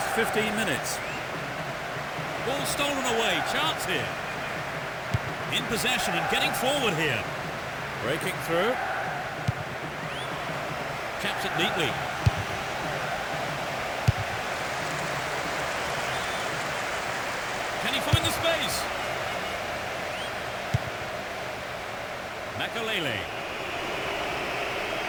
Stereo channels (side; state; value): both; identical; correlation 1.00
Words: 15 minutes. Ball stolen away, chance here. In possession and getting forward here. Breaking through. Chaps it neatly. Can he find the space? Makalele.